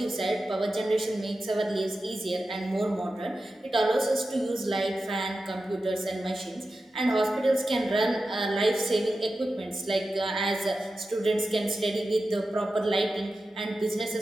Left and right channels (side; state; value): both; normal; correlation 0.92